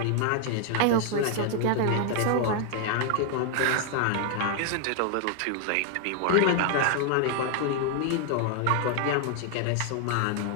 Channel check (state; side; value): different; both; correlation 0.00